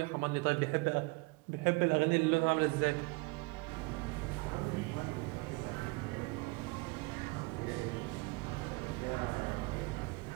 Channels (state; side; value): quieter; left; 26.8 dB